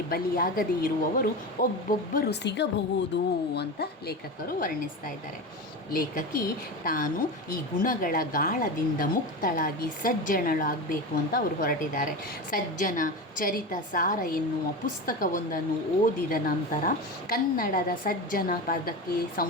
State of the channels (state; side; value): normal; both; correlation 0.24